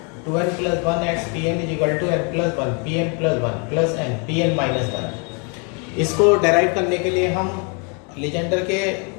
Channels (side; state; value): right; quieter; 35.8 dB